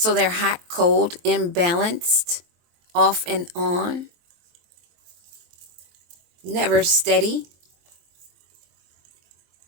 they're hot, cold, imbalanced, off and on, never steady.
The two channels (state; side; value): late; left; 23 ms